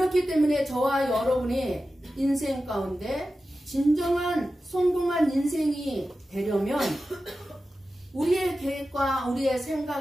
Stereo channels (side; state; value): both; normal; correlation 0.93